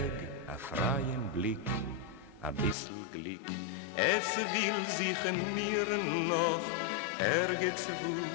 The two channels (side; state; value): right; drops out; at 2.8 s